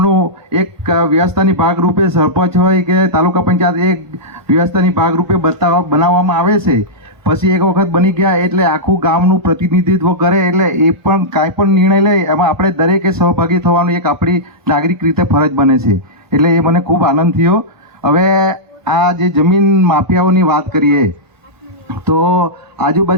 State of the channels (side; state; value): left; late; 1.3 ms